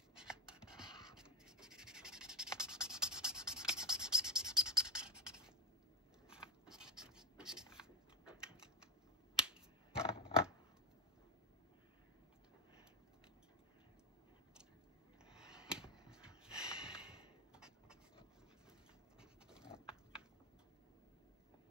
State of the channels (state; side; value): normal; both; correlation 0.12